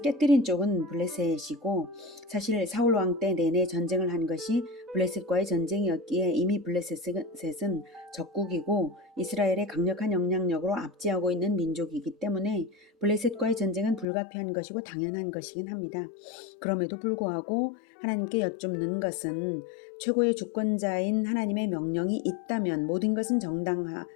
쪽은 블레셋이고, 사실 사울 왕 때 내내 전쟁을 한 것이 블레셋과의 전쟁이었기에 이미 블레셋은 적국이고 이스라엘의 강력한 영향력으로 압제하고 있는 민족이기 때문에 블레셋과의 전쟁은 불가피한 것이고 당연한 것이긴 합니다. 그럼에도 불구하고 하나님께 여쭙는 것은 최고의 주권자인 하나님의 명령이 있다면 모든 것은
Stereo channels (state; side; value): drops out; right; at 14.1 s